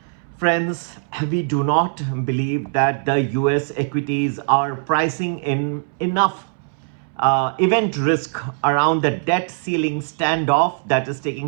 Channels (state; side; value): silent; left; 65 dB below the other